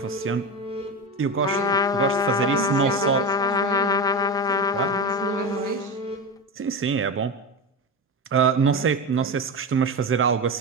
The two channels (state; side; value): normal; both; correlation 0.21